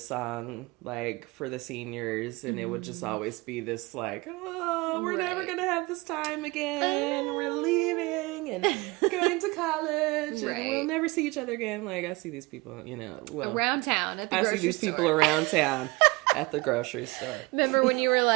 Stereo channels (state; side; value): quieter; left; 24.5 dB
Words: song like for the seniors, and it would just always be this like, oh, we're never gonna have this time again. We're leaving and going to college, and we'll never see each other again. Like I see these people, you know, around town at the I grocery see these store. people around town at the grocery store. Remember when you were